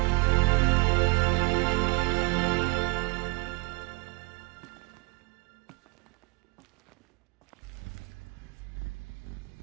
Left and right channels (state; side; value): quieter; left; 26.4 dB